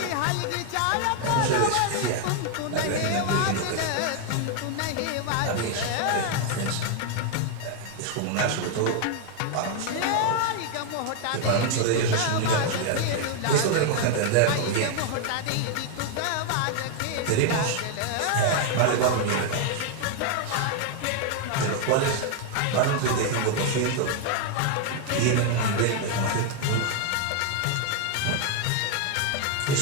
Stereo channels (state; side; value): different; both; correlation 0.00